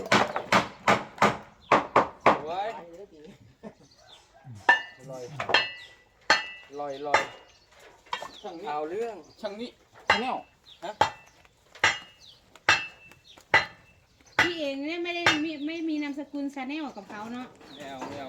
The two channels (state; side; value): identical; both; correlation 1.00